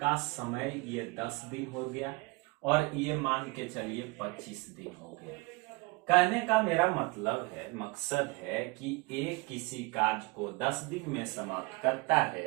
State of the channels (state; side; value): quieter; left; 25.9 dB